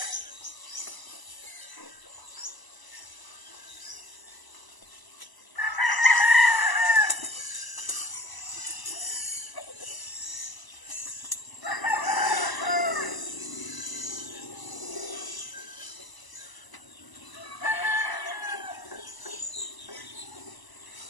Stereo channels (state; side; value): late; right; 1.0 ms